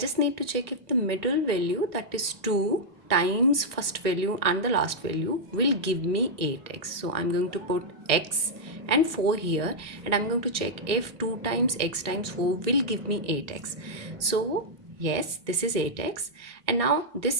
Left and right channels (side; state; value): left; late; 1.6 ms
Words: need to check if the middle value, that is 2 times first value and the last value, will give me 8x. So I'm going to put x and 4 here, and I'm going to check if 2 times x times 4 will give me 8x. So yes, this is 8x, and now